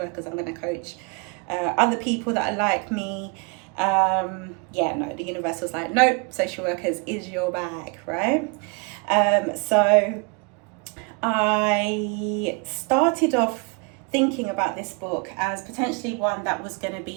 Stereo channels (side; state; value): left; quieter; 32.6 dB